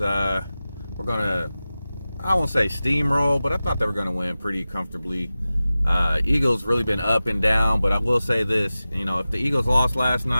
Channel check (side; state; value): both; inverted; correlation -0.96